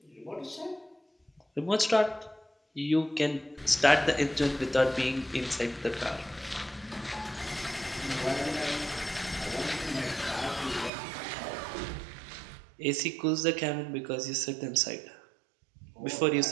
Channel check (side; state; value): left; drops out; at 10.9 s